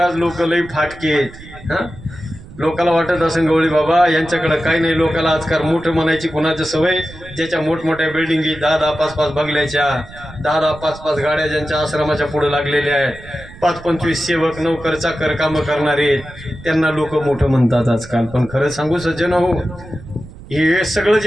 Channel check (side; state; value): right; noise; rumble, 18 dB below the sound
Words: लोक लई फाटकेत. लोकाला वाटत असेल गवळी बाबा यांच्याकडे काही नाही. लोकाला आजकाल मोठं म्हणायची कुणाची सवय, ज्याच्या मोठमोठ्या बिल्डिंगी 10-10, 5-5 बंगल्याच्या, 10-10, 5-5 गाड्या ज्यांच्या आश्रमाच्या पुढे लागलेल्या आहेत, 5-25 सेवक नोकर चाकर कामं करणारे, त्यांना लोक मोठं म्हणतात आजकाल. पण खरं सांगू सज्जन हो, हे सगळं